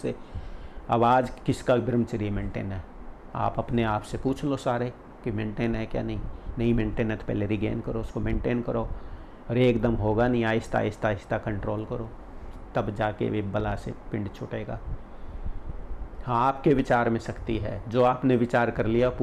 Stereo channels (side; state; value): both; identical; correlation 1.00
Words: अब आज किसका ब्रह्मचर्य मेंटेन है, आप अपने आप से पूछ लो सारे कि मेंटेन है क्या, नहीं मेंटेन है तो पहले रिगेन करो, उसको मेंटेन करो। और एकदम होगा नहीं, आहिस्ता आहिस्ता आहिस्ता कंट्रोल करो, तब जाके वे बला से पिंड छूटेगा। हाँ, आपके विचार में शक्ति है, जो आपने विचार कर लिया